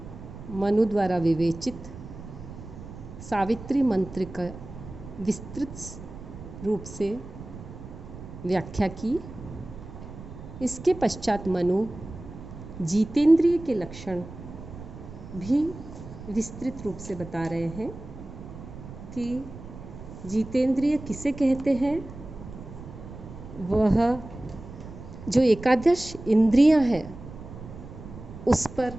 मनु द्वारा विवेचित सावित्री मंत्र का विस्तृत रूप से व्याख्या की। इसके पश्चात मनु जितेंद्रिय के लक्षण भी विस्तृत रूप से बता रहे हैं कि जितेंद्रिय किसे कहते हैं। वह जो एकादश इंद्रियां हैं उस पर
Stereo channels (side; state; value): right; noise; rumble, 13 dB below the sound